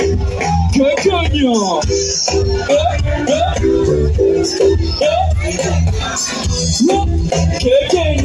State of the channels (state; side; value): identical; both; correlation 1.00